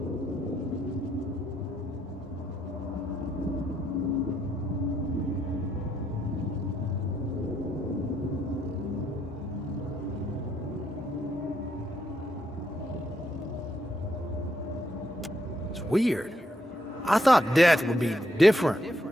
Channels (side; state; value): both; normal; correlation 0.76